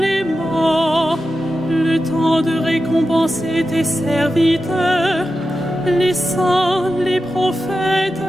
morts, le temps de récompenser tes serviteurs, les saints, les prophètes,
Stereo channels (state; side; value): normal; both; correlation 0.91